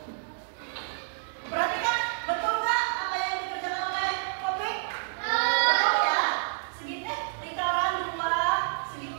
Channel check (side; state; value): left; silent; digital silence